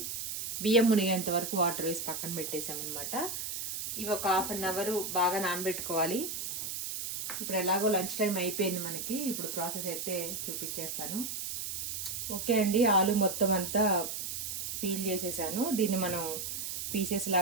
బియ్యం మునిగేంత వరకు వాటర్ వేసి పక్కన పెట్టేసామన్నమాట. ఇవి ఒక 1/2 అవర్ బాగా నానబెట్టుకోవాలి. ఇప్పుడు ఎలాగో లంచ్ టైం అయిపోయింది మనకి. ఇప్పుడు ప్రాసెస్ అయితే చూపించేస్తాను. ఓకే అండి, ఆలు మొత్తం అంతా పీల్ చేసేసాను. దీన్ని మనం పీసెస్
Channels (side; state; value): right; noise; hiss, 4 dB below the sound